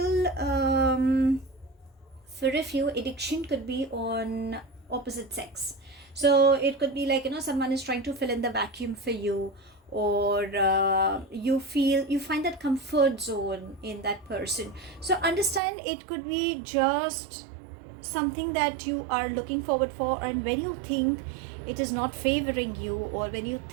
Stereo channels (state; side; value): drops out; left; at 15.6 s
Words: for a few, addiction could be on opposite sex. So it could be like, someone is trying to fill in the vacuum for you, or you find that comfort zone in that person. So understand, it could be just something that you are looking forward for, and when you think it is not favoring you, or when you